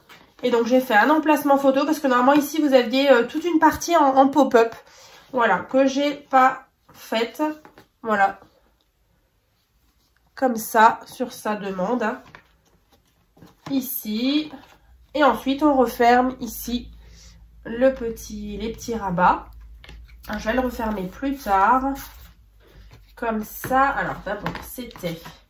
Et donc j'ai fait un emplacement photo parce que normalement ici vous aviez toute une partie en pop-up. Voilà, que j'ai pas faite. Voilà. Comme ça, sur sa demande. Hein. Ici. Et ensuite on referme ici les petits rabats. Alors, je vais le refermer plus tard. Comme ça. Alors d'abord c'était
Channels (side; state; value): both; identical; correlation 1.00